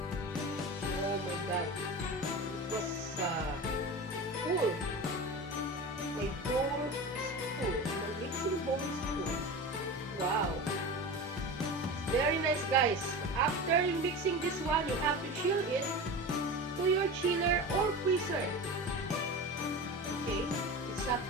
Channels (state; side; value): normal; both; correlation 0.29